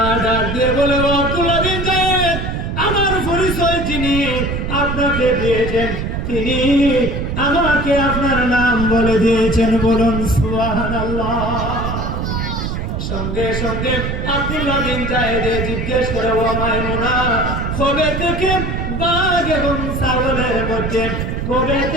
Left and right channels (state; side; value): noise; right; rumble, 3 dB below the sound